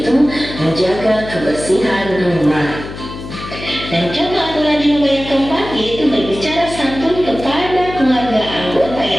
menjaga kebersihan rumah. Dan contoh aturan di rumah yang keempat yaitu berbicara santun kepada keluarga anggota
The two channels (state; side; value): noise; left; hum, 11 dB below the sound